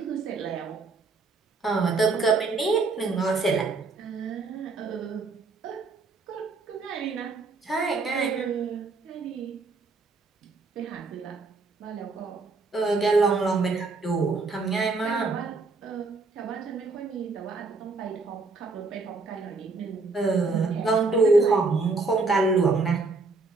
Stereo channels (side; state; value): left; quieter; 3.9 dB